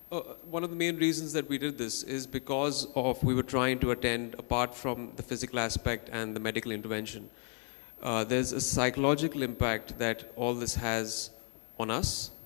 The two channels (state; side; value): quieter; right; 37.7 dB